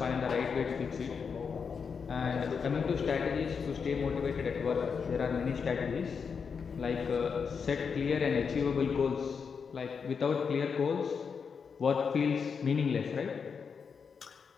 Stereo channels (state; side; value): quieter; right; 6.0 dB